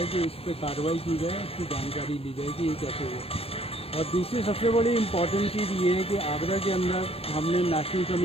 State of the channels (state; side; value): late; right; 0.28 ms